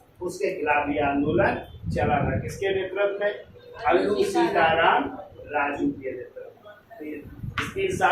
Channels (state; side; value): identical; both; correlation 1.00